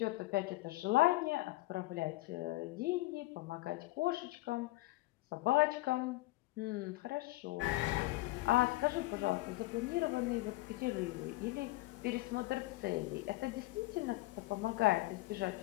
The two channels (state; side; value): quieter; right; 19.6 dB